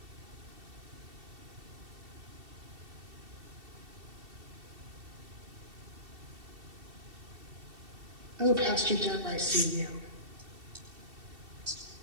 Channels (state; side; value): late; left; 2.7 ms